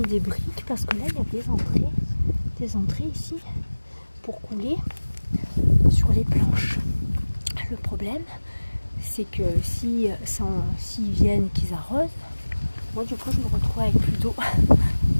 des briques parce que là, il y a des entrées ici pour couler sur les planches. Le problème, c'est que s'ils viennent, qu'ils arrosent, moi du coup je me retrouve avec plus d'eau.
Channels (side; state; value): both; inverted; correlation -1.00